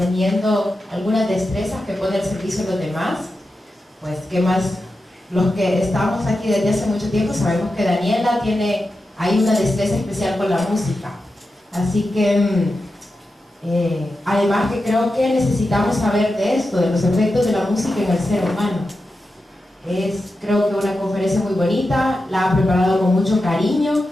algunas destrezas que pone al servicio de los demás. Pues qué más, los que estamos aquí desde hace mucho tiempo sabemos que Daniela hay una destreza especial con la música. Así que además que creo que necesitamos saber de esto, de los efectos de la música en el ser humano. Es creo que una conferencia muy bonita, la ha preparado con mucho cariño,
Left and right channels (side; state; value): both; normal; correlation 0.90